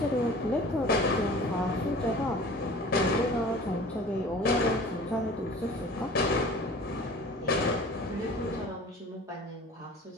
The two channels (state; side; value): normal; both; correlation 0.43